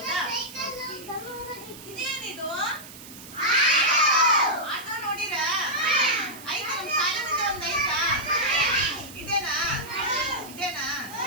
ಇದೇನಿದು? ಆಟೋ ನೋಡಿರಾ? ಆಯ್ತಾ? ನಮ್ ಶಾಲೆ ಮುಂದೆ ಒಂದ್ ಐತಾ? ಇದೇನಾ?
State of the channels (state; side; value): noise; right; hiss, 16 dB below the sound